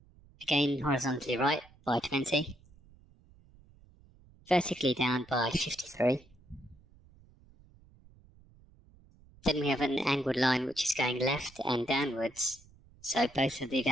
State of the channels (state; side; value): noise; right; rumble, 27 dB below the sound